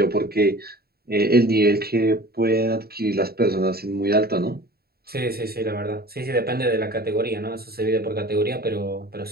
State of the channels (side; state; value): left; late; 0.45 ms